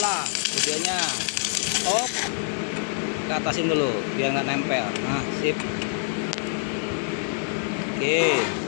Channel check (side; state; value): right; silent; 61 dB below the other